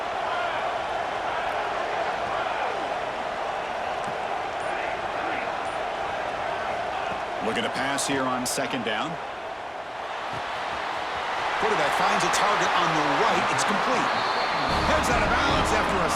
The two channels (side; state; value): both; identical; correlation 1.00